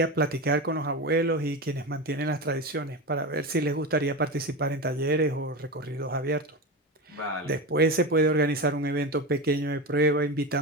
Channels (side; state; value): both; normal; correlation 0.21